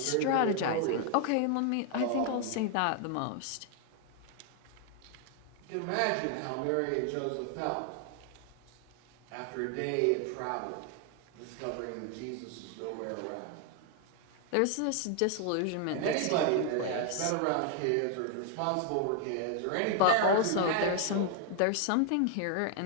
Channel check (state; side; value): different; both; correlation 0.00